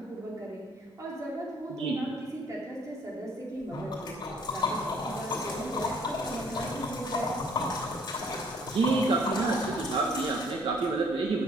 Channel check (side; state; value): both; normal; correlation 0.60